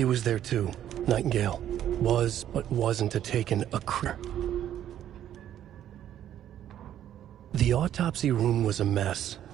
was there too. Nightingale was, but wasn't taken a The autopsy room was a mess,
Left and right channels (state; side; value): quieter; left; 11.0 dB